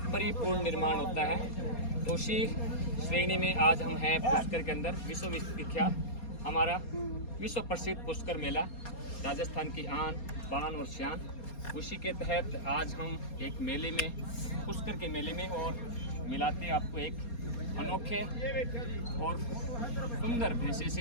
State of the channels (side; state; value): right; late; 4.2 ms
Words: परिपूर्ण निर्माण होता है। तो उसी श्रेणी में आज हम हैं पुष्कर के अंदर। विश्वविख्यात हमारा विश्व प्रसिद्ध पुष्कर मेला, राजस्थान की आन बान और शान। उसी के तहत आज हम एक मेले में, पुष्कर के मेले में, और मिलाते हैं आपको एक अनोखे और सुंदर भैंसे